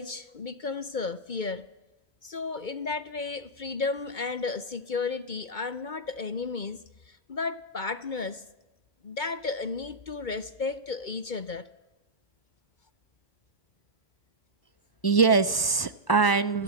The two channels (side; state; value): right; late; 1.0 ms